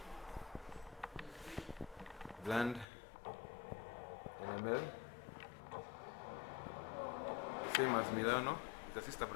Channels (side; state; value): right; drops out; at 2.9 s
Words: bland NML, same as Milano. It's a sister